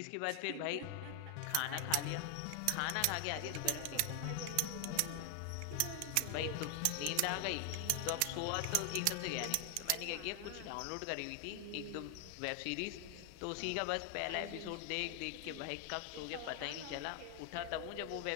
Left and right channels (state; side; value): different; both; correlation 0.00